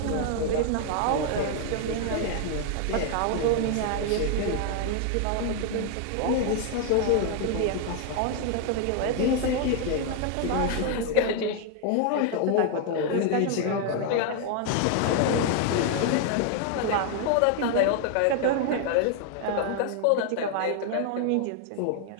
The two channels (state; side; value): different; both; correlation 0.00